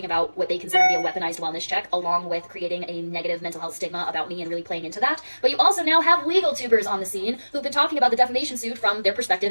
about what they consider to be a weaponized wellness check, along with creating a negative mental health stigma about me and really playing into that. But you also now have legal tubers on the scene who've been talking about the defamation suit from their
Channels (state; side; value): inverted; both; correlation -1.00